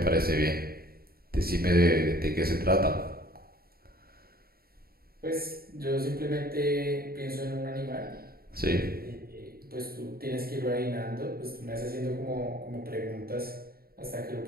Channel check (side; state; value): left; late; 0.44 ms